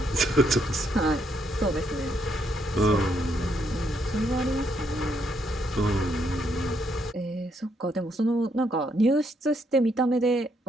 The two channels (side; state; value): both; normal; correlation 0.75